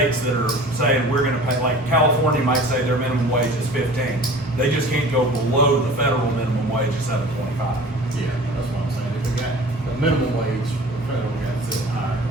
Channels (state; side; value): normal; both; correlation 0.43